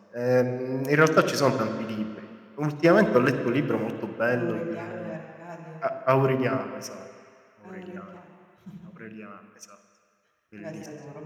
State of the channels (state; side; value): identical; both; correlation 1.00